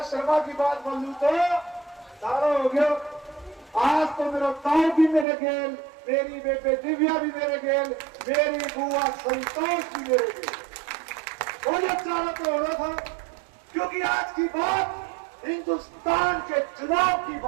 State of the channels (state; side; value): drops out; left; at 5.2 s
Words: शर्मा की बात बोल लूं तो सारा हो गया। आज तो मेरा ताऊ भी मेरे गेल, मेरी बेटे दिव्या भी मेरे गेल, मेरी बुआ संतोष भी मेरे गेल। मुझे चारा तो हो रहा था क्योंकि आज की बात हिंदुस्तान के चुनाव की